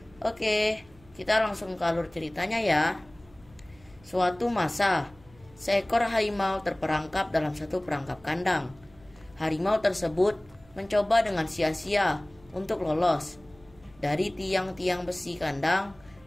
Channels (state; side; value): noise; right; hum, 27 dB below the sound